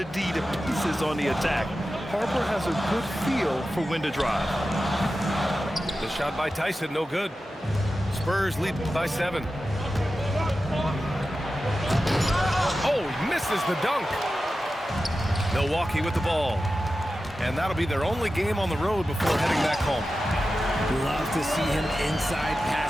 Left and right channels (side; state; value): both; normal; correlation 0.93